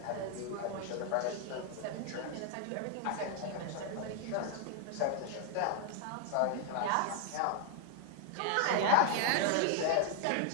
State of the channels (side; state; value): both; different; correlation 0.01